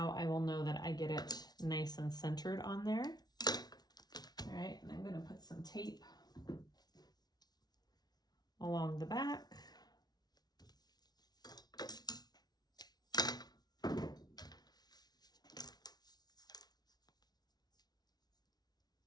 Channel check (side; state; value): right; late; 0.19 ms